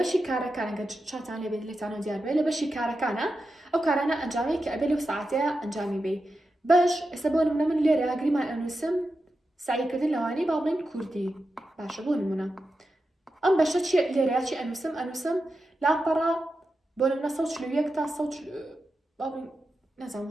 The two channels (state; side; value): normal; both; correlation 0.90